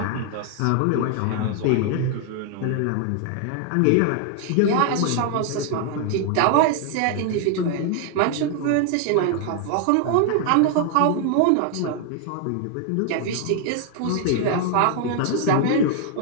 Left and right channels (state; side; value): different; both; correlation 0.00